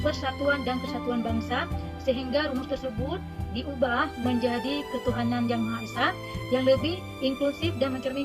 persatuan dan kesatuan bangsa, sehingga rumus tersebut diubah menjadi ketuhanan yang Maha Esa yang lebih inklusif dan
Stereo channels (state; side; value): identical; both; correlation 1.00